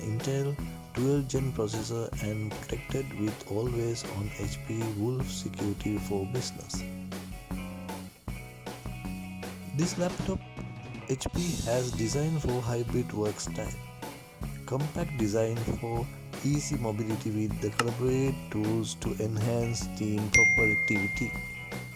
12th Gen processor and protected with always on HP Wolf security for business. This laptop HP has designed for hybrid work style, compact design for easy mobility with the collaborate tools to enhance team productivity.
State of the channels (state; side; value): identical; both; correlation 1.00